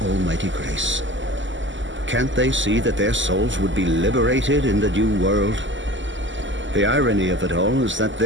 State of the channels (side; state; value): left; late; 0.54 ms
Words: almighty grace. Can't they see that their souls would be liberated in the new world? The irony of it all is that